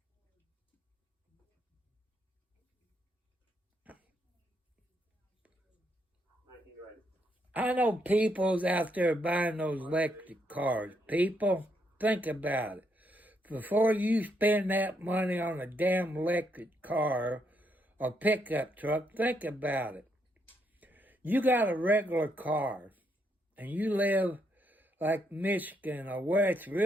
I know people's out there buying those electric cars. People, think about it. Before you spend that money on a damn electric car or pickup truck, think about it. You got a regular car and you live like Michigan or where it's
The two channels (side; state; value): both; normal; correlation 0.76